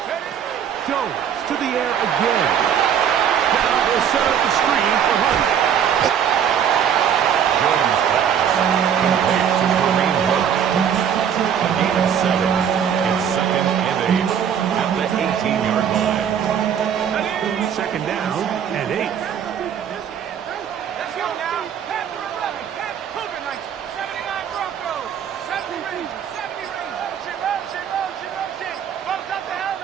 Jones to the air again. Now they'll set up the screen for Hunt. Jones pass. Complete to Kareem Hunt. A gain of 7. It's 2nd and 8 at the 18-yard line. 2nd down and 8. Let's go now. Pass to 11. Pass Cougar 79 Broncos. 70 Rangers. 70 Rangers. Motion. Bumps up the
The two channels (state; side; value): quieter; left; 8.5 dB